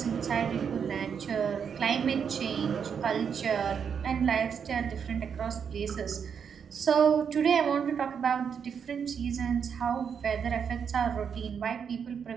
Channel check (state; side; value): quieter; left; 7.1 dB